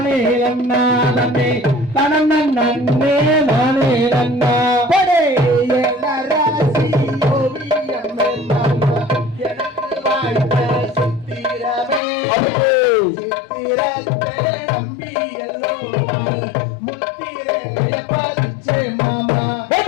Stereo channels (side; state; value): right; drops out; at 12.0 s